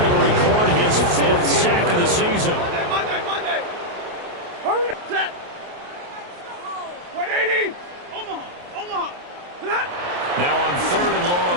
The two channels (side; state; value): left; late; 28 ms